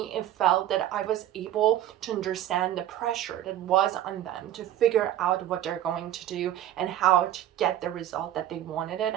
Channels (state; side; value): quieter; left; 12.2 dB